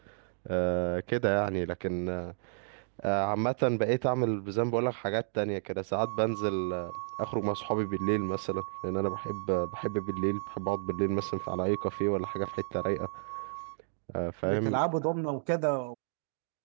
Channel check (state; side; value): silent; left; digital silence